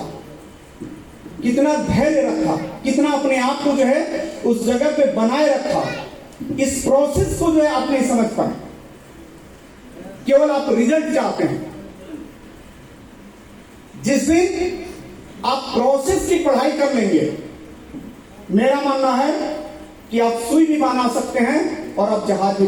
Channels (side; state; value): both; identical; correlation 1.00